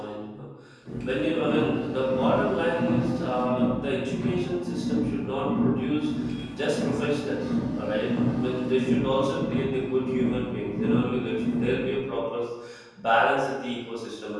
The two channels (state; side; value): identical; both; correlation 1.00